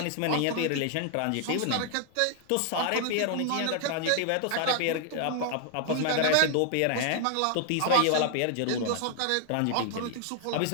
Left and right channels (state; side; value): different; both; correlation 0.00